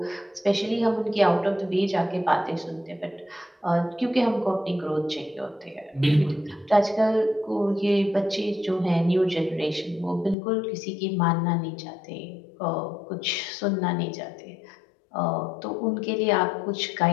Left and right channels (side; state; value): right; drops out; at 10.4 s